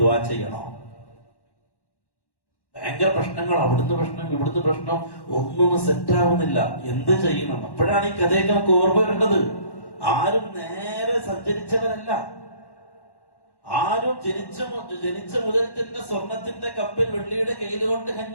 ദുആ ചെയ്യണോ? ഭയങ്കര പ്രശ്നങ്ങൾ, അവിടുന്ന് പ്രശ്നം ഇവിടുന്ന് പ്രശ്നം, ഒന്നും സെറ്റാവുന്നില്ല. എന്ത് ചെയ്യണം? അപ്പോഴാണ് ഈ കഥയൊക്കെ നമുക്ക് ഓർമ്മ വരേണ്ടത്. ആരും നേരെ സഞ്ചരിച്ചവരല്ല, ആരും ജനിച്ച മുതൽ തന്നെ സ്വർണത്തിന്റെ കപ്പിൽ വെള്ളിയുടെ കയ്യിൽ കൊണ്ട്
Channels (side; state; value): right; late; 1.1 ms